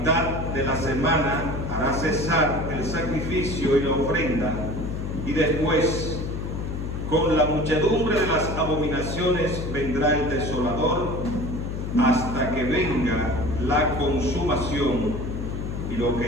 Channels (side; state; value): left; noise; hum, 4 dB below the sound